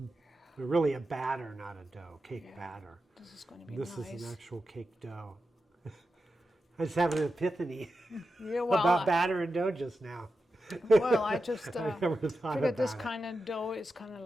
they're really a batter, not a dough, cake Yeah. batter. this is gonna be This nice. is an actual cake dough. I just had an epiphany Yeah, well, about batter and dough just now. well, I just I never thought figured this about it. kind of dough is kind of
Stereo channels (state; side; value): normal; both; correlation 0.90